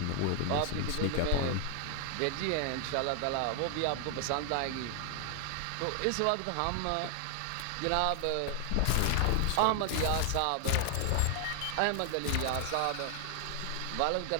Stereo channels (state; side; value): different; both; correlation 0.00